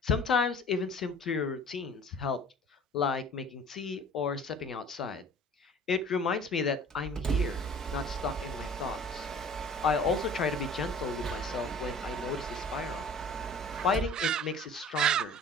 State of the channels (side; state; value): both; normal; correlation 0.46